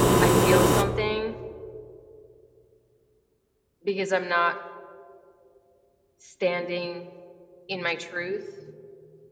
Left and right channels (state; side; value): identical; both; correlation 1.00